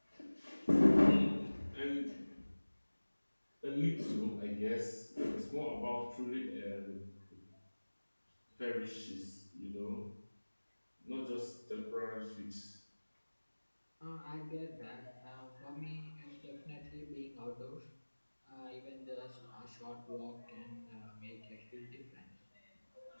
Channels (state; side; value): inverted; both; correlation -1.00